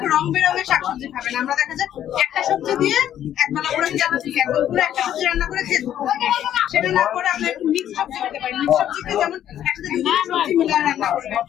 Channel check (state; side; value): quieter; right; 10.9 dB